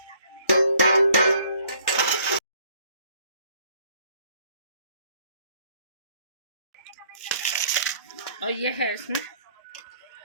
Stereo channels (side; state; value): both; inverted; correlation -0.61